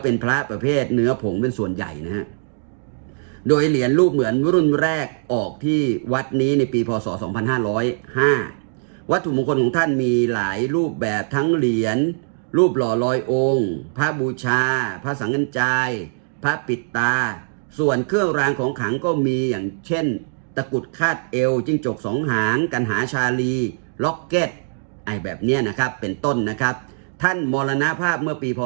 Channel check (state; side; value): silent; left; digital silence